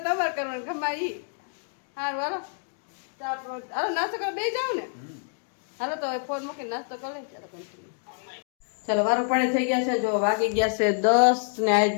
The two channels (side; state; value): right; silent; 60 dB below the other